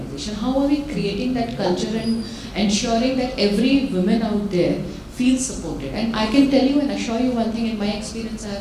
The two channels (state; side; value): identical; both; correlation 1.00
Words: How are we creating that culture and ensuring that every woman out there feels supported? And I can tell you and assure you one thing, in my experience I